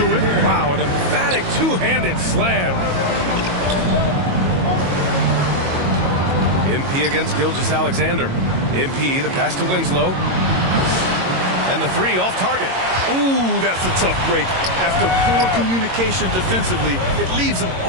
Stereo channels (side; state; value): left; late; 22 ms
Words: it. Wow, an emphatic two-handed slam. MP against Gilgeous-Alexander. MP, the pass to Winslow. And the three off target. Ooh, that's a tough break. After poor communication defensively, it leaves him